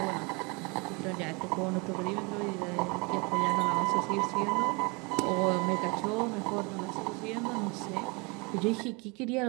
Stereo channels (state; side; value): quieter; left; 29.1 dB